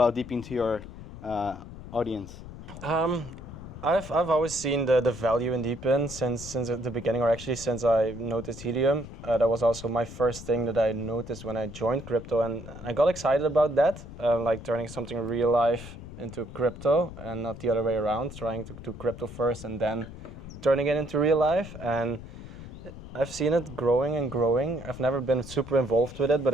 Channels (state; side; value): noise; left; rumble, 13 dB below the sound